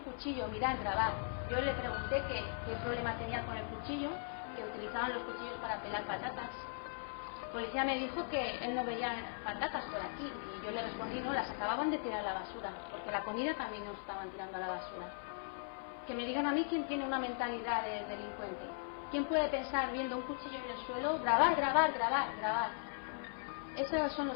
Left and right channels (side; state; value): right; silent; 52 dB below the other